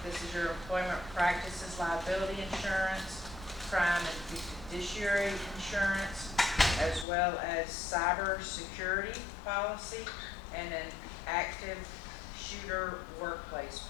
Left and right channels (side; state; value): right; drops out; at 7.1 s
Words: This is your employment practices liability insurance, crime and fiduciary insurance, as well as cyber security policy, and an active shooter workplace